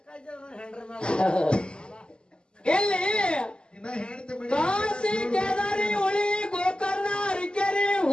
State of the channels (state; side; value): late; right; 0.050 ms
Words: ಇಲ್ಲಿ ಇನ್ನ ಹೆಣ್ತಿ ಮನೆ ಕಾಶಿ ಕೇದಾರಿ ಹುಳಿ ಗೋಕರ್ಣ ಹರಿಕೆರೆ